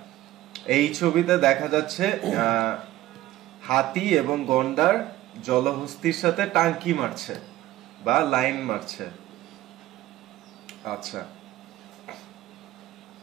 এই ছবিতে দেখা যাচ্ছে হাতি এবং গন্ডার জলহস্তির সাথে টাঙ্কি মারছে বা লাইন মারছে। আচ্ছা,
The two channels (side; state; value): left; quieter; 15.3 dB